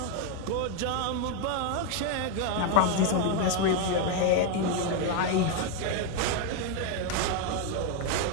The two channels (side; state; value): both; different; correlation 0.01